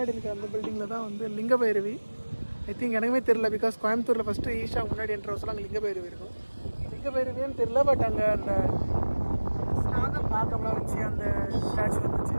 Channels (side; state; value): both; inverted; correlation -1.00